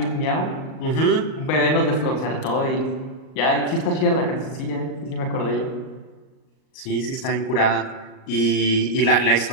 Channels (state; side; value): late; right; 38 ms